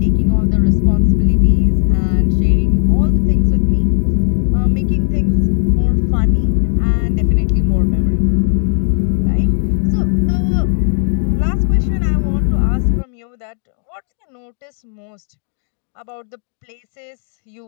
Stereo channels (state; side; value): silent; right; digital silence